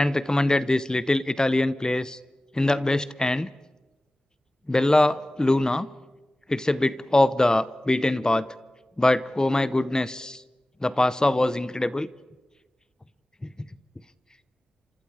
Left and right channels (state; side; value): normal; both; correlation 0.97